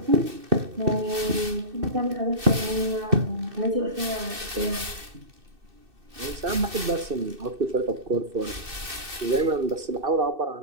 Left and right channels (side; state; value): left; late; 2.6 ms